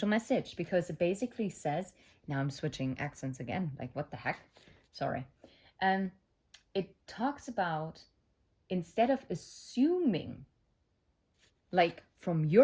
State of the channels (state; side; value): identical; both; correlation 1.00